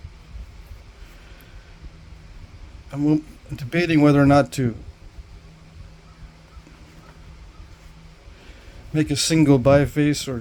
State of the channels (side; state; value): both; identical; correlation 1.00